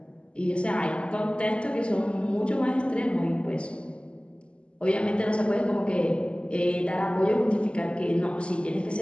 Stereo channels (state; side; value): late; right; 0.054 ms